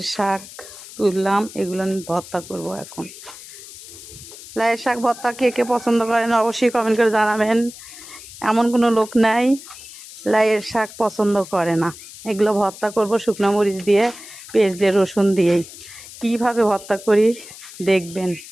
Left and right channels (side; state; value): left; noise; hiss, 16 dB below the sound